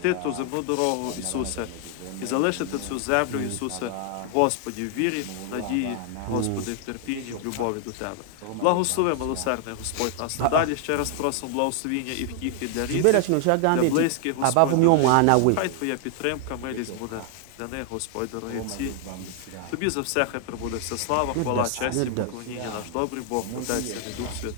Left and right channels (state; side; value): different; both; correlation 0.00